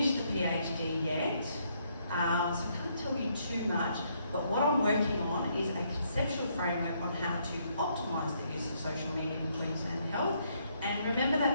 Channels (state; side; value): inverted; both; correlation -0.72